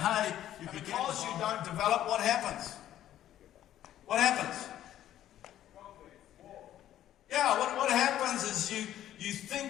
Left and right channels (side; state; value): right; quieter; 12.2 dB